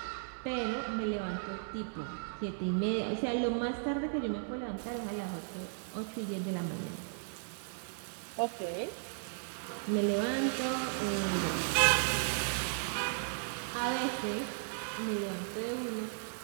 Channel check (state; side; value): silent; left; digital silence